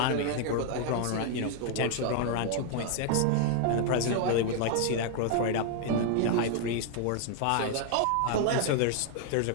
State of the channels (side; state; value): both; different; correlation 0.00